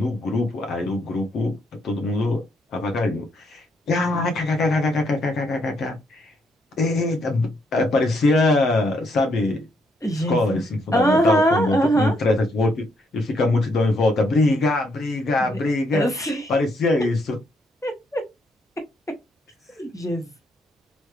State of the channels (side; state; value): both; normal; correlation 0.74